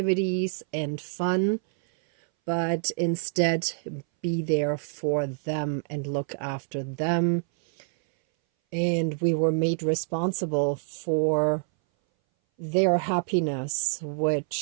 and fun, but instead be there for them and look after them. And we were made responsible for their happiness,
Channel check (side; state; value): left; silent; 59 dB below the other